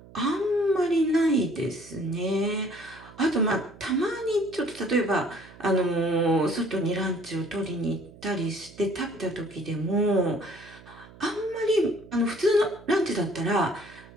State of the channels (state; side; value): noise; right; hum, 21 dB below the sound